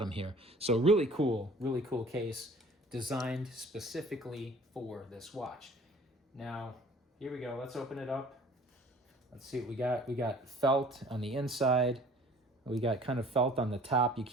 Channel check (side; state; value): both; normal; correlation 0.50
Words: here. So really cool case designed specifically for this watch. Now, here we go, let's open it up. Let's see what we got. We got felt on the inside. We got kind of felt on the top. You